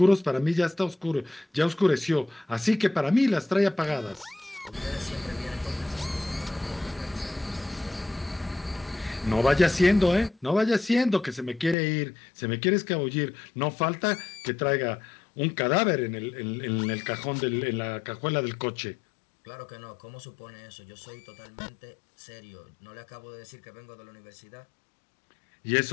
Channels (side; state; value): right; drops out; at 11.8 s